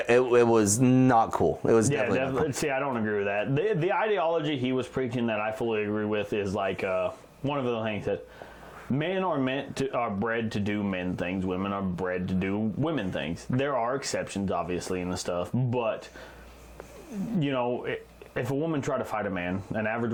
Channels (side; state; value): both; identical; correlation 1.00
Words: not cool. It was definitely. See, I don't agree with that. The ideology he was preaching that I fully agree with is like one of the things that men are bred to do men things. Women are bred to do women things. There are exceptions, obviously, in the stuff, but you know, if a woman try to fight a man, an average